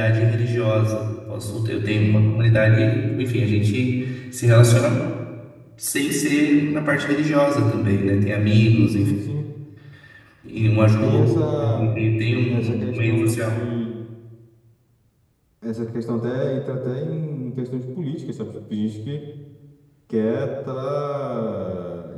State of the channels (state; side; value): identical; both; correlation 1.00